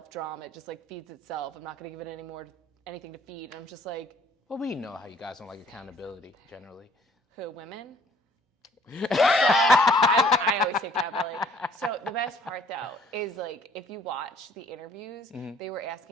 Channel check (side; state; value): both; normal; correlation 0.59